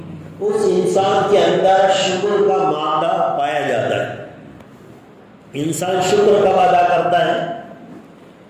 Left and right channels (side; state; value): both; identical; correlation 1.00